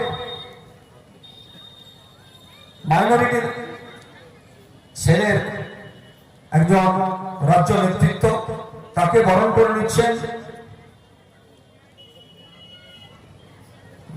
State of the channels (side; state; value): both; identical; correlation 1.00